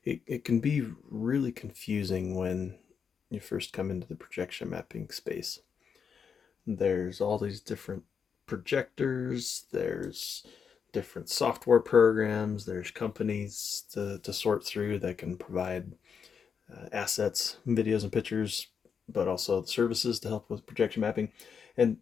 It can be really confusing when you first come into the projection mapping space. There's all these different projectors, there's different software programs, there's companies to sort through that can provide assets, videos, and pictures, but also services to help with projection mapping.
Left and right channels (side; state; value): right; quieter; 6.6 dB